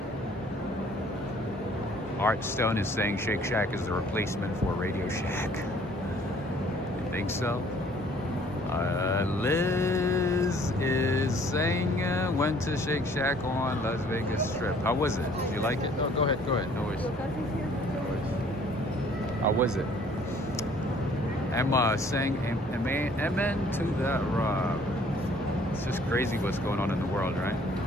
Art Stone is saying Shake Shack is the replacement for Radio Shack. You think so? Liz is saying went to Shake Shack on Las Vegas Strip. How was it? Did you like it? Oh, go ahead. No worries. How was it? Emma saying amen to that, Rob. It's just crazy what's going on in the world, right?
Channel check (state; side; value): normal; both; correlation 0.57